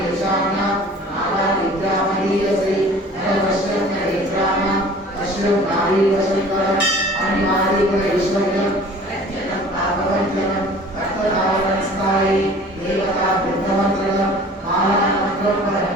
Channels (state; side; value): normal; both; correlation 0.46